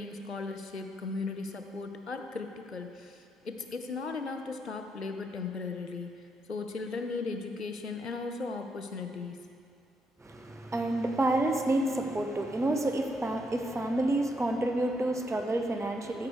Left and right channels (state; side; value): normal; both; correlation 0.78